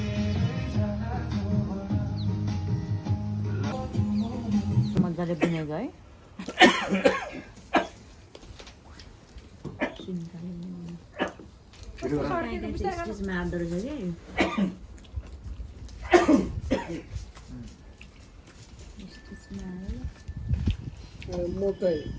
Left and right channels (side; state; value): both; identical; correlation 1.00